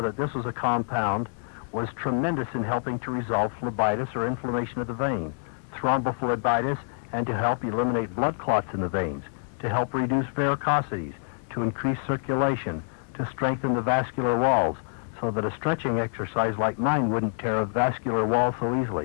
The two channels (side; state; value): right; silent; digital silence